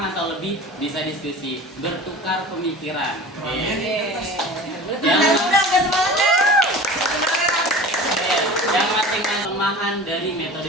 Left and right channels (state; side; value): normal; both; correlation 0.38